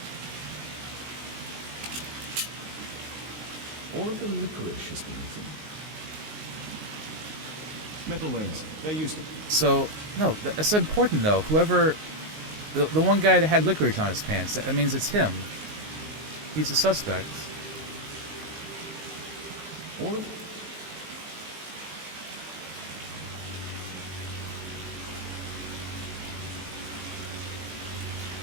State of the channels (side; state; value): left; late; 19 ms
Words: All of the licorice has been eaten. Metal rings. They're used to... So, no, that's important though. Whoever... The one guy that had licorice on his pants, that means it's him. He's a suspect. All of...